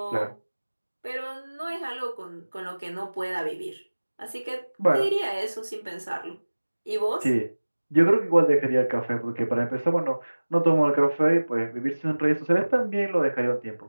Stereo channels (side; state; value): both; inverted; correlation -1.00